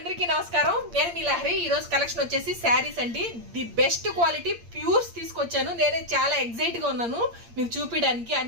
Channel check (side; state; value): left; late; 8.7 ms